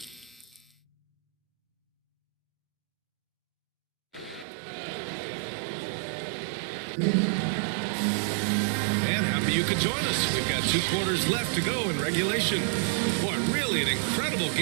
And happy you could join us. We've got 2 quarters left to go in regulation. Boy, really an incredible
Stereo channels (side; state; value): left; drops out; at 4.5 s